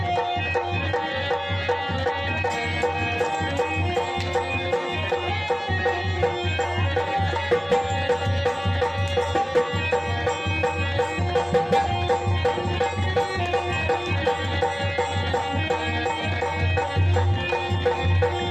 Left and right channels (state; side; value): identical; both; correlation 1.00